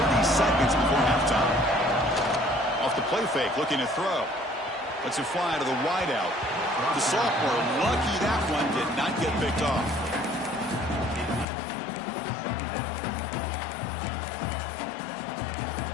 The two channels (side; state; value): right; drops out; at 11.5 s